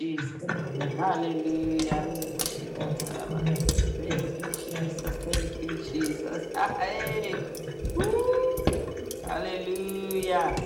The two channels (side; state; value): both; identical; correlation 1.00